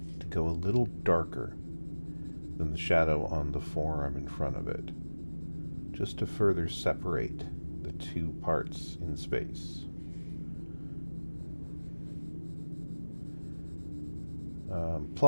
to go a little darker than the shadow on the forearm in front of it, just to further separate the two parts in space.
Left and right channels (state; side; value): inverted; both; correlation -1.00